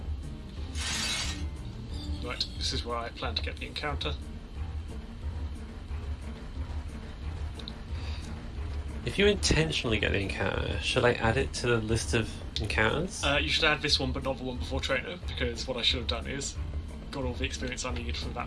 Right, this is where I plan to get the encounter. If you intentionally get the encounter, should I add it to the list of encounters? You should add this one, but not the one before Trainer, because what I should have done is got all the experience I needed from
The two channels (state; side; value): identical; both; correlation 1.00